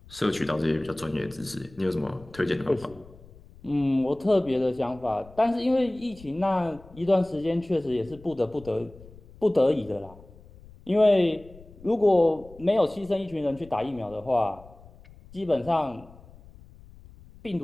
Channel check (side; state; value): left; noise; rumble, 22 dB below the sound